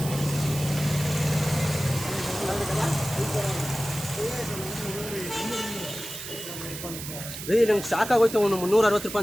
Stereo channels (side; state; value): right; noise; hiss, 9 dB below the sound